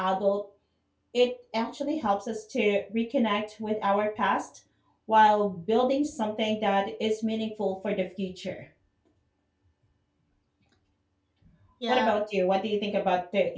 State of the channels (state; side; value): identical; both; correlation 1.00